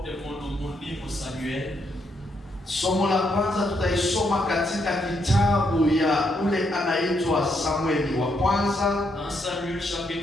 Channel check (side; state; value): both; normal; correlation 0.76